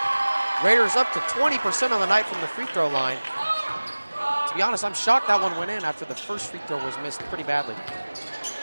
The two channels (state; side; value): inverted; both; correlation -1.00